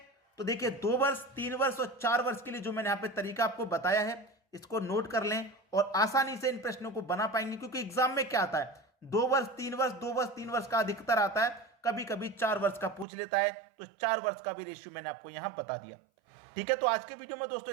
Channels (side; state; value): left; drops out; at 13.1 s